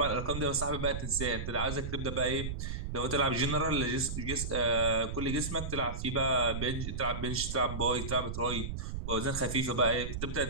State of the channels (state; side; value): noise; right; rumble, 5 dB below the sound